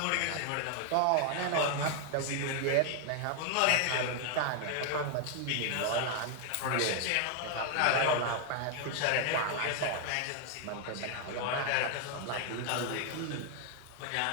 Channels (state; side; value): different; both; correlation 0.00